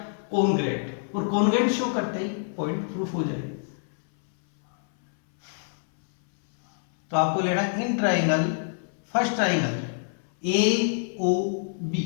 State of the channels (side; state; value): right; silent; 61 dB below the other